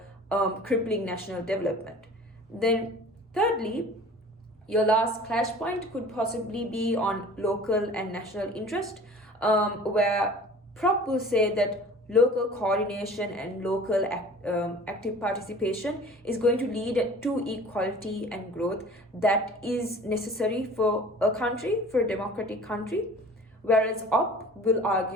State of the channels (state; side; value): normal; both; correlation 0.45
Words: crippling national development. Then thirdly, your last clash point could possibly be on local and national interest, where Prop will say that local coordination and local active participation is going to lead to equality and growth that is necessary for a country, for a democratic country. Whereas Op will